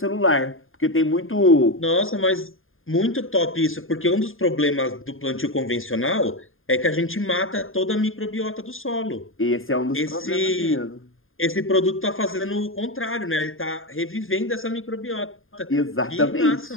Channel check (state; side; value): late; right; 0.59 ms